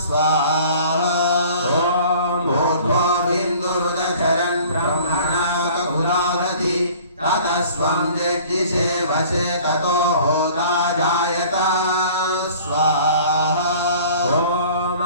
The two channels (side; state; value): both; inverted; correlation -0.49